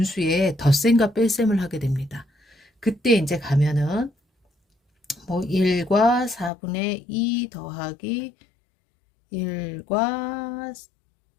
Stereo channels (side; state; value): right; drops out; at 6.5 s